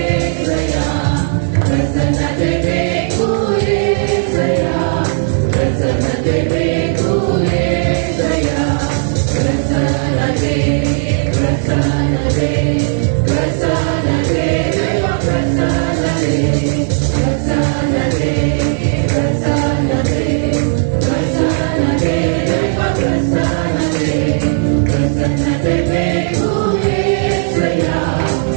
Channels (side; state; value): left; silent; digital silence